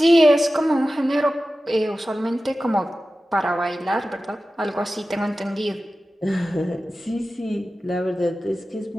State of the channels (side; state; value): both; normal; correlation 0.95